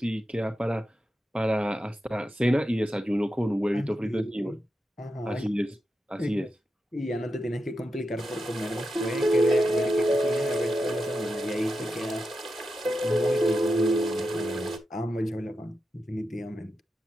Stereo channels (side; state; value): both; normal; correlation 0.88